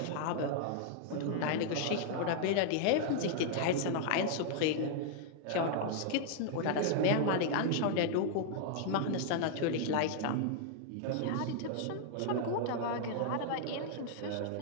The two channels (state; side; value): different; both; correlation -0.01